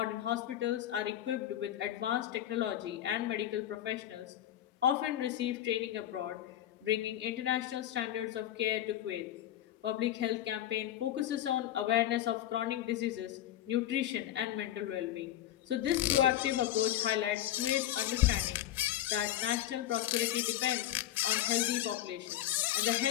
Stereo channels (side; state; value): right; quieter; 12.5 dB